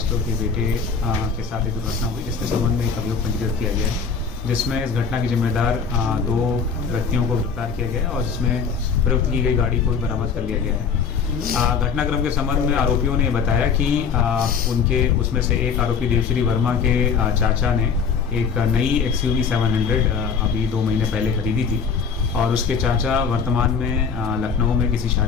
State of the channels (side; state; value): right; quieter; 5.9 dB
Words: के बेटे के साथ एक दुर्घटना हुई, जिसके संबंध में एक अभियोग पंजीकृत किया गया है, जिसमें इस घटना के जिम्मेदार 2 व्यक्तियों को गिरफ्तार किया गया है और इसमें प्रयुक्त की गई गाड़ी को बरामद कर लिया गया है। घटनाक्रम के संबंध में आरोपियों ने बताया कि उनके उसमें से एक आरोपी देवश्री वर्मा के चाचा ने एक नई XUV 700 अभी 2 महीने पहले खरीदी थी और उसके चाचा वर्तमान में लखनऊ में किसी